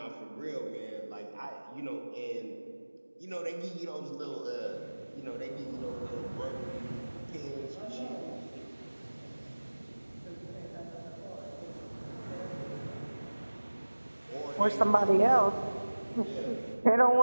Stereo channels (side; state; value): both; inverted; correlation -1.00